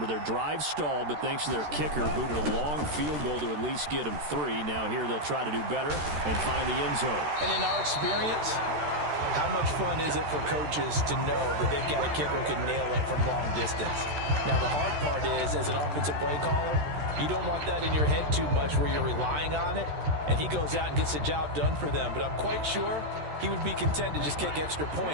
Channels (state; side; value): late; left; 13 ms